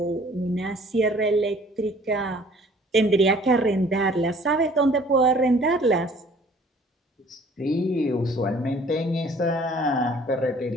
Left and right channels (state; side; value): normal; both; correlation 0.54